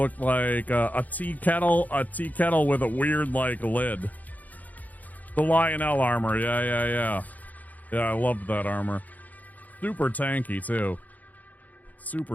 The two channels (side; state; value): right; late; 0.079 ms